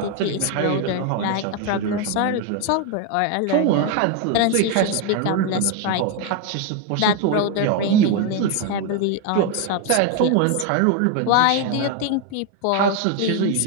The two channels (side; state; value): both; different; correlation 0.01